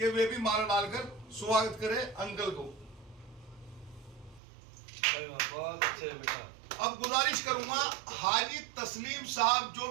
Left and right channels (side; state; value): left; drops out; at 4.4 s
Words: वे भी माला डालकर स्वागत करें अंकल को। बहुत अच्छे बेटा। अब गुजारिश करूंगा हाजी तस्लीम साहब जो